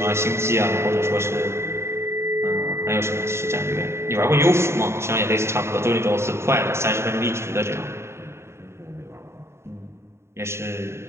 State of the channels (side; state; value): left; late; 0.13 ms